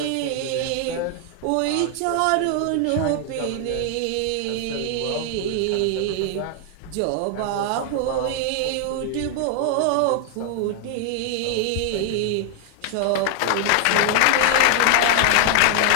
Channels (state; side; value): different; both; correlation 0.00